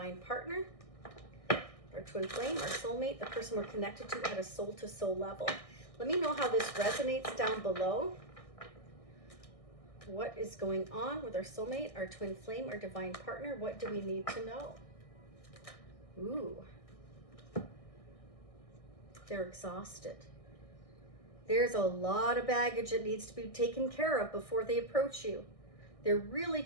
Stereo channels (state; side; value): late; right; 1.6 ms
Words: partner, our twin flame, our soulmate, the person we're connected to at a soul-to-soul level. Let me know how this resonates down below. What is going on with our soulmate, our twin flame, our divine partner? What do we need to know? Ooh. They're exhausted. There's a lot of baggage that needs to be taken care of before they approach you. They're really